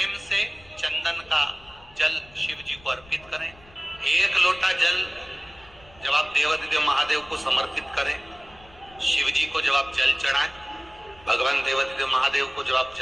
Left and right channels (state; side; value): noise; left; rumble, 25 dB below the sound